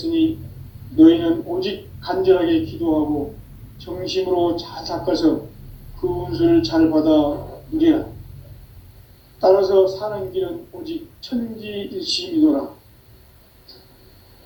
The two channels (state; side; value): identical; both; correlation 1.00